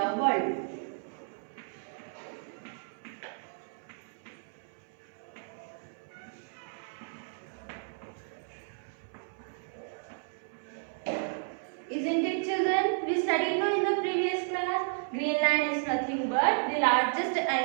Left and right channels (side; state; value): left; silent; 56 dB below the other